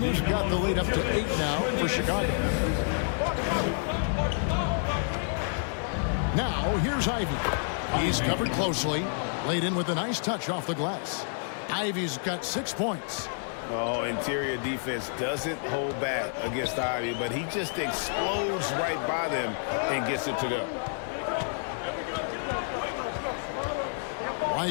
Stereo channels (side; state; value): right; silent; 59 dB below the other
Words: got the lead up to 8 now for Chicago. Now, here's Ivy. He's covered closely. Laid in with a nice touch off the glass. Ivy's got 6 points. Oh, interior defense doesn't hold back against Ivy, but he just explodes right by them and gets it to go.